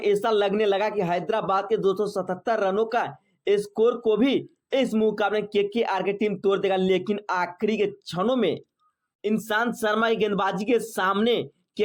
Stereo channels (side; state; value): both; identical; correlation 1.00